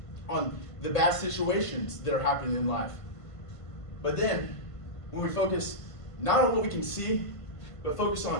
on the bad situations that are happening in life. But then, when we focus not on what we can see, but focus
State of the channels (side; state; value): right; late; 1.5 ms